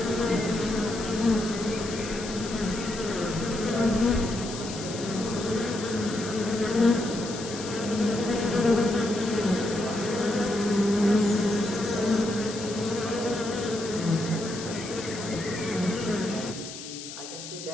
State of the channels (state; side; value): noise; left; hiss, 11 dB below the sound